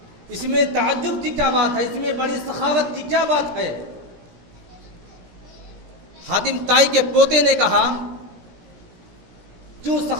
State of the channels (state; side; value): late; left; 17 ms